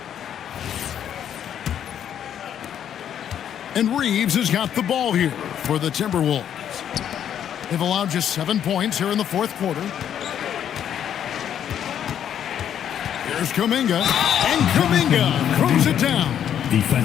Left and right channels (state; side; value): quieter; right; 9.5 dB